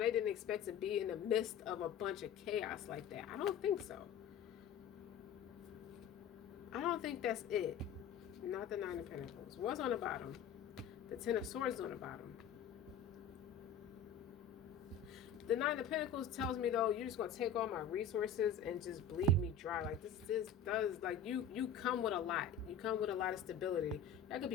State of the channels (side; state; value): right; quieter; 6.1 dB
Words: expect to be in the midst of a bunch of chaos like that. I don't think so. I don't think that's it. Not the Nine of Pentacles. What's on the bottom? The Ten of Swords on the bottom. The Nine of Pentacles tells me, though, you're just going to take all my resources and just bleed me dry. Like, this does, like, you come with a lot. You come with a lot of stability. That could